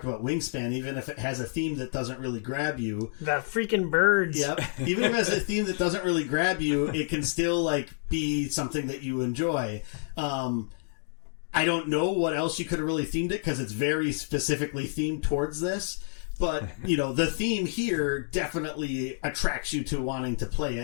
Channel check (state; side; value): silent; right; digital silence